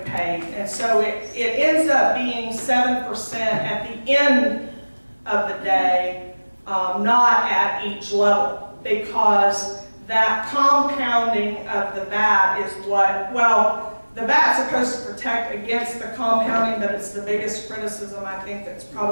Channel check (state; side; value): inverted; both; correlation -1.00